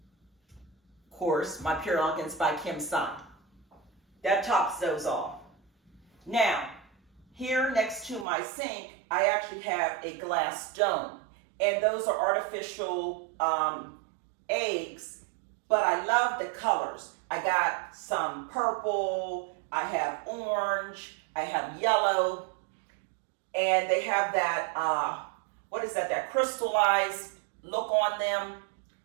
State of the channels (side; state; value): left; drops out; at 8.2 s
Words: course, my Pure Elegance by Kim Sun. That tops those off. Now, here next to my sink, I actually have a glass dome. And those are artificial eggs. But I love the colors. I got some purple, I have orange, I have yellow, and they have that, that crystallized look on them.